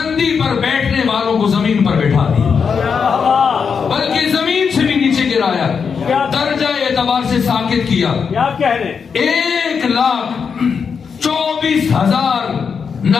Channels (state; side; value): quieter; right; 6.1 dB